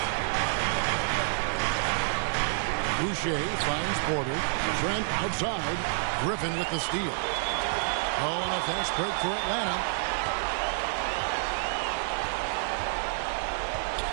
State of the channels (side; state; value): left; silent; digital silence